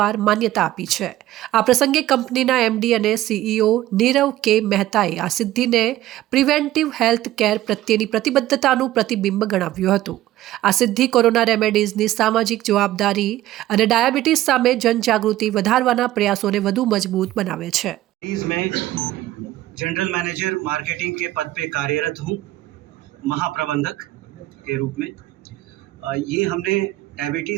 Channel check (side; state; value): left; quieter; 15.0 dB